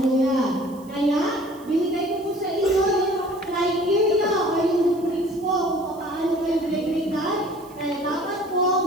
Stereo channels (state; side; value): noise; right; hiss, 25 dB below the sound